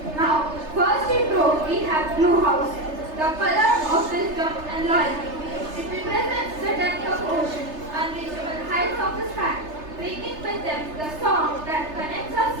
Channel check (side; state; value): left; late; 3.3 ms